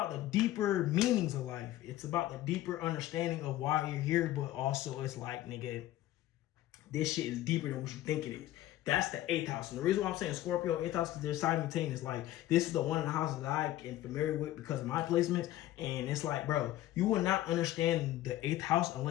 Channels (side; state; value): right; quieter; 14.4 dB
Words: the deeper meanings of life. It's about the deeper understanding of why you're here, but also it's like, nigga, this shit is deeper than what you think it is. That's the 8th house. And the reason why I'm saying Scorpio, 8th house, because they're simultaneous. Like, this is the one of the houses that I am familiar with because of my placements. And it's like, bro, you will not understand the 8th house